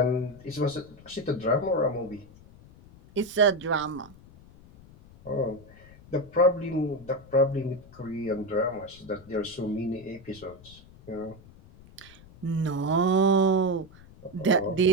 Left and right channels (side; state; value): left; noise; rumble, 22 dB below the sound